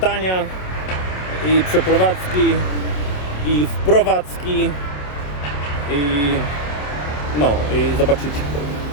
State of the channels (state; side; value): late; right; 27 ms